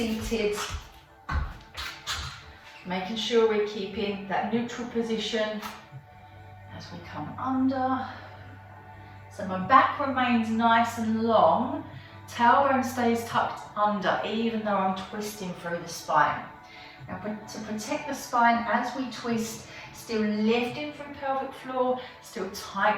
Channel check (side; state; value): both; identical; correlation 1.00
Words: Making sure we're keeping that neutral position as we come under. So my back remains nice and long. Tailbone stays tucked under, even though I'm twisting through the spine. Now to protect the spine as we twist, still lifting through pelvic floor, still